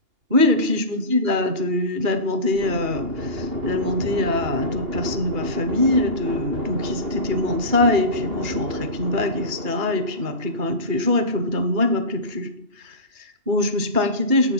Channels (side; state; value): left; late; 2.8 ms